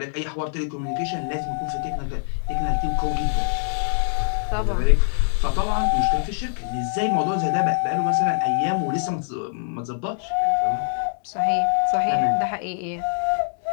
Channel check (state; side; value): silent; right; digital silence